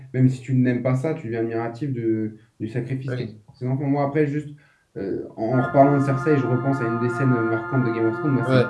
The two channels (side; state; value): both; identical; correlation 1.00